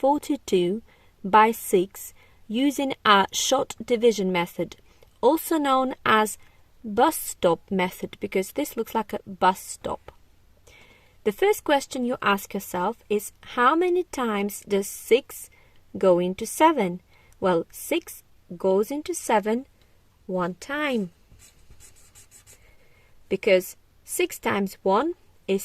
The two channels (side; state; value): both; identical; correlation 1.00